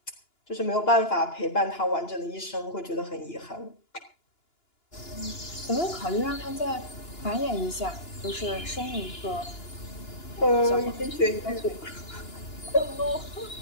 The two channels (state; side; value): late; right; 2.9 ms